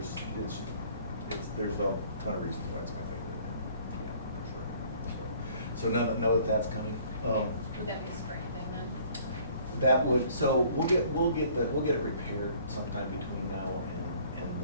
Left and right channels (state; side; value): inverted; both; correlation -0.56